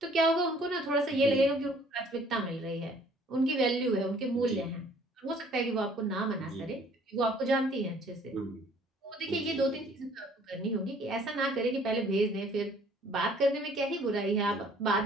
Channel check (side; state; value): both; normal; correlation 0.57